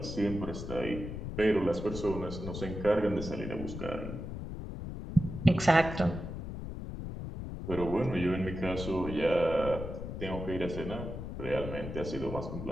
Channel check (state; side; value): noise; left; rumble, 7 dB below the sound